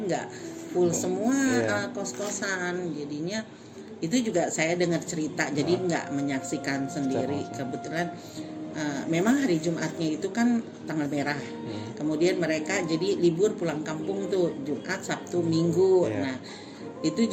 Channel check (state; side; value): identical; both; correlation 1.00